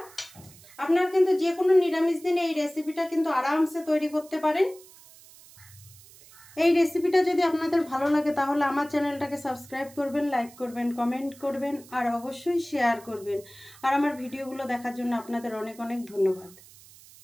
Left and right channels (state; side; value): noise; right; hiss, 22 dB below the sound